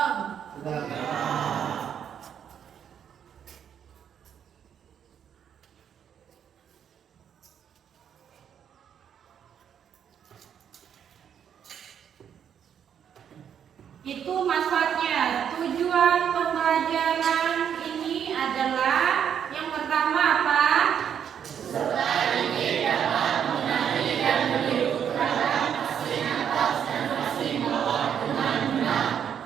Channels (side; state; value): left; quieter; 8.5 dB